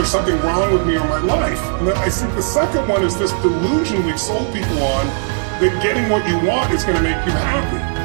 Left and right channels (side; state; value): left; silent; 63 dB below the other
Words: something wrong with me or my life. And then I think the second one is this delusion we've sold people on, that getting what you want is going to make you happy.